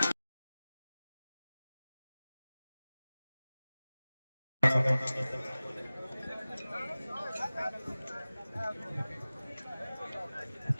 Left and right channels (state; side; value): inverted; both; correlation -0.97